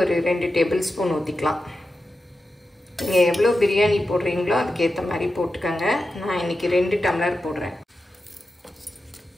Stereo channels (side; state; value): both; normal; correlation 0.91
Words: ஒரு 2 டேபிள் ஸ்பூன் ஊற்றிக்கலாம். நீங்கள் எவ்வளோ பிரியாணி போடுறீங்களோ அதுக்கேற்ற மாதிரி போட்டுக்கோங்க. நான் இன்றைக்கி 2 டம்ளர் போடுறேன்.